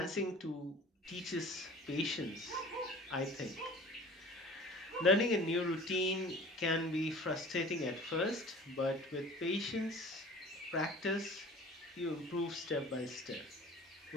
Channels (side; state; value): both; normal; correlation 0.44